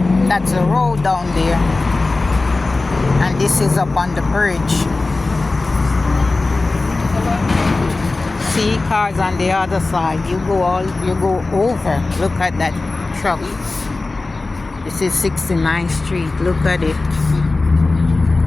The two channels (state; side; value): quieter; right; 3.4 dB